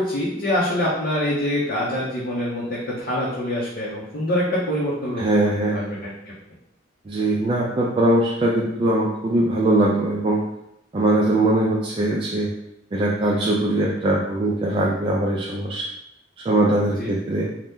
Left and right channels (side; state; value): both; normal; correlation 0.49